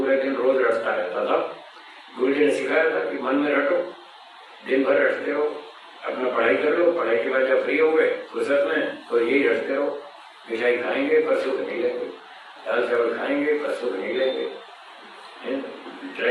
दिन रोज रटता रहता था। गुरु जी ने सिखाया था कि मन में रटो, दिन भर रटते रहो, अपना पढ़ाई कर लो, पढ़ाई के बाद जब फ्री हो गए फुर्सत में तो यही रटते रहो। मिठाई खाएंगे पर सुख नहीं लेंगे, दाल चावल खाएंगे पर सुख नहीं लेंगे,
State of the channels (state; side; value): identical; both; correlation 1.00